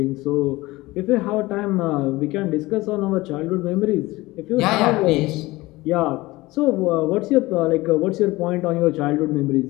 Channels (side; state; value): right; quieter; 20.1 dB